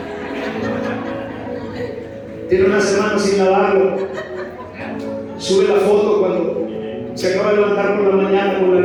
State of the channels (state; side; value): identical; both; correlation 1.00